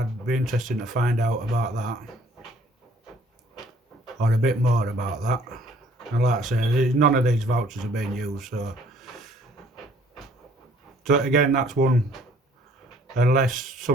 be interested to find out about that, or a bit more about that. And like I say, none of these vouchers are being used, so again, that's one, unless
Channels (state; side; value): normal; both; correlation 0.58